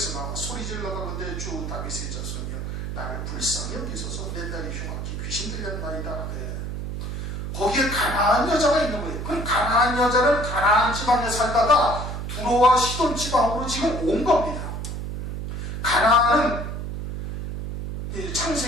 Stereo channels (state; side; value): noise; right; hum, 5 dB below the sound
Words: 나와 소리질러 가는데 주 다윗의 자손이여 나를 불쌍히 여기소서 내 딸이 흉악히 귀신 들렸나이다. 네. 거기에 가나안 여자가 있는 거예요. 그럼 가나안 여자는 가나안 지방에 살다가 두로와 시돈 지방으로 지금 온 겁니다. 가나안은